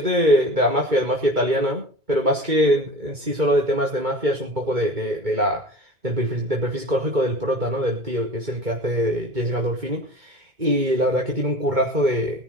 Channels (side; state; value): left; late; 2.2 ms